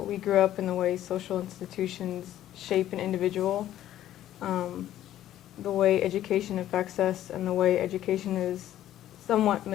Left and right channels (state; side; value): quieter; right; 12.6 dB